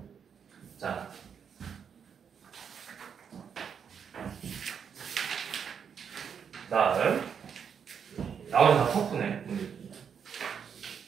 자, 다음 나머지 다 터프네.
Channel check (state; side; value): quieter; left; 7.2 dB